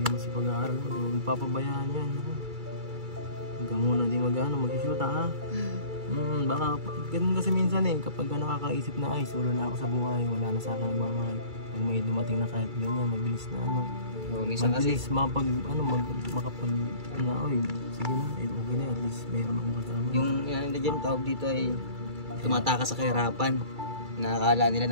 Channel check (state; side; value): late; left; 2.3 ms